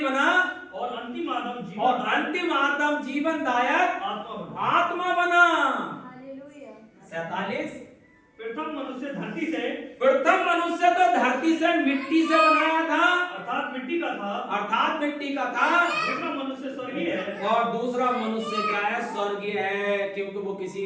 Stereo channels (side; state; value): both; identical; correlation 1.00